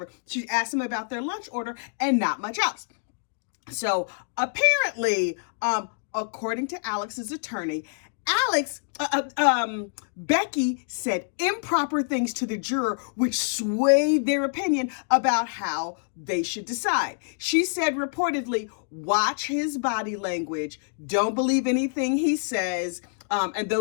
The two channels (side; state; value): right; silent; digital silence